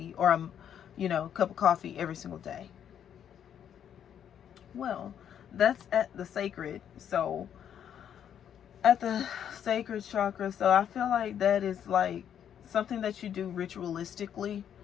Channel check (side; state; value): right; quieter; 9.2 dB